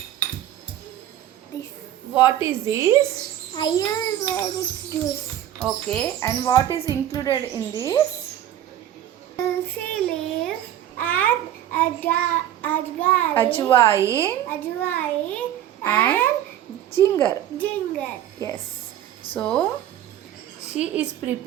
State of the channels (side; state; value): left; quieter; 11.7 dB